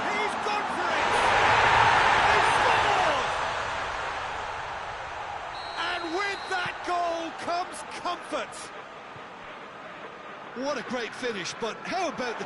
gone for it! He scored! And with that goal, comes comfort. What a great finish, but how about the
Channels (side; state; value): both; identical; correlation 1.00